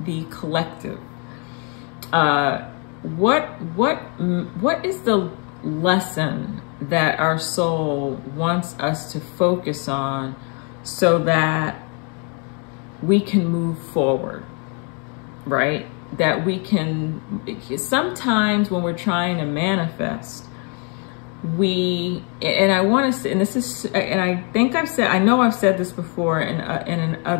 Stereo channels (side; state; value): right; quieter; 36.6 dB